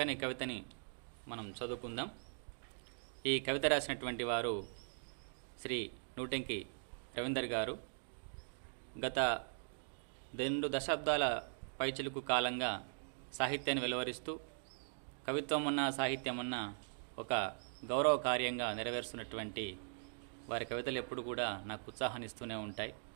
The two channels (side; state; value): left; silent; digital silence